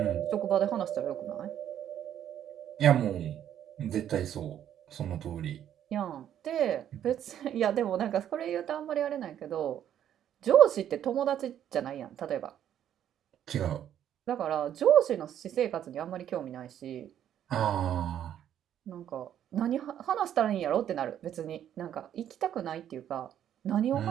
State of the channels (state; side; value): quieter; left; 10.3 dB